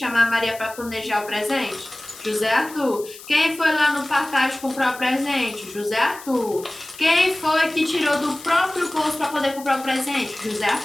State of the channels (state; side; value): noise; left; hiss, 17 dB below the sound